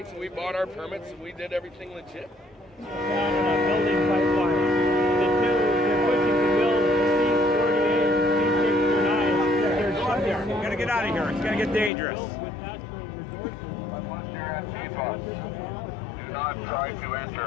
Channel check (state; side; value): drops out; right; at 11.9 s